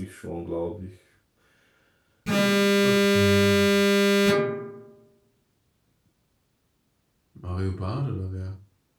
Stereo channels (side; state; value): both; identical; correlation 1.00